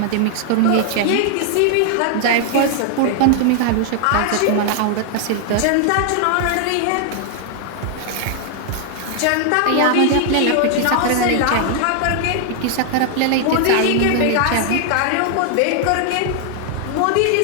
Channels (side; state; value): both; different; correlation 0.00